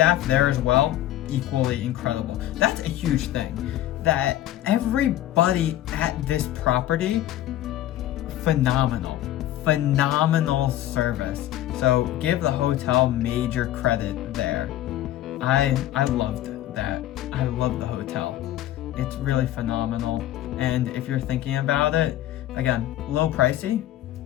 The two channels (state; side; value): quieter; right; 13.4 dB